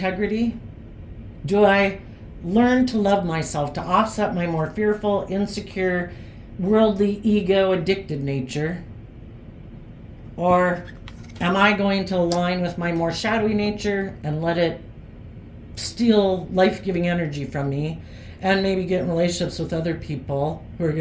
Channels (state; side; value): identical; both; correlation 1.00